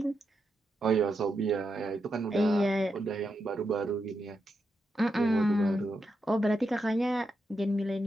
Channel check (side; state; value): both; normal; correlation 0.85